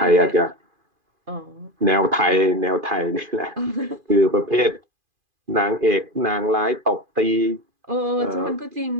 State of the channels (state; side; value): late; left; 2.5 ms